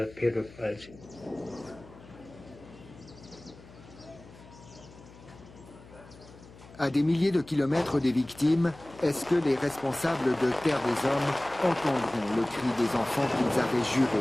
À des milliers de kilomètres des victimes, est-ce que les responsables de Terre des Hommes entendront le cri des enfants qu'ils avaient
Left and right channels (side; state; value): left; noise; hum, 20 dB below the sound